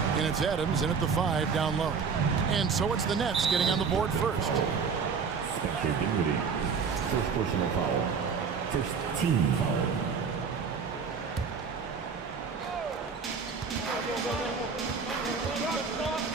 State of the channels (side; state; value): left; quieter; 5.7 dB